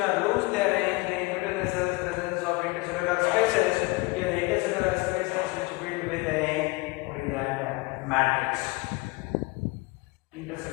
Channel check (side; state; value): right; quieter; 24.6 dB